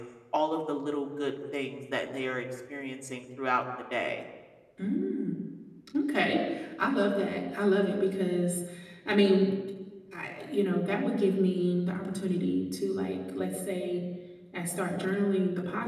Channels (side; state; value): both; identical; correlation 1.00